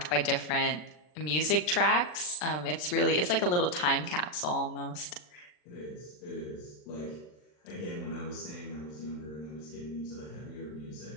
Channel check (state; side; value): late; right; 40 ms